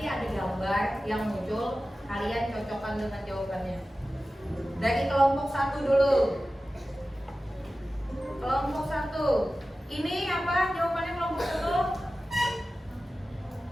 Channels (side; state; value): both; normal; correlation 0.95